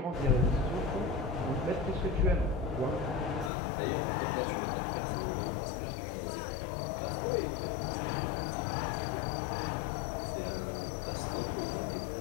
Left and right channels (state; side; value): drops out; right; at 3.5 s